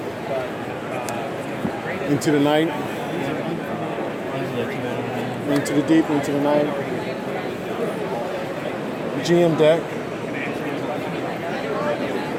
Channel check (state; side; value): identical; both; correlation 1.00